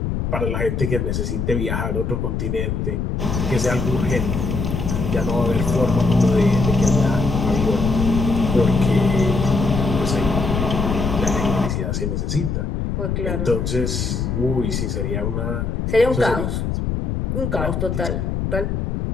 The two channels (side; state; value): left; noise; rumble, 1 dB below the sound